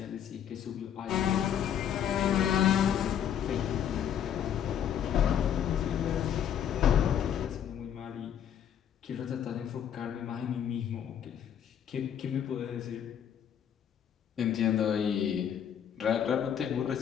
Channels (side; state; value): right; quieter; 9.1 dB